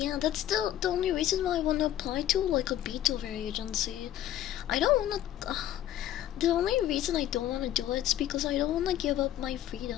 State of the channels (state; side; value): quieter; right; 12.3 dB